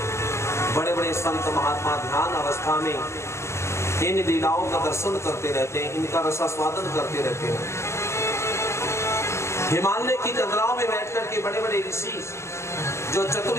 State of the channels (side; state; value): right; late; 0.13 ms